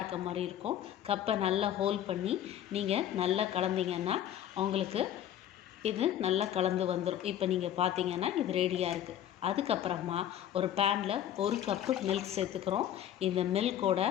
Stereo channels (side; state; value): right; quieter; 11.0 dB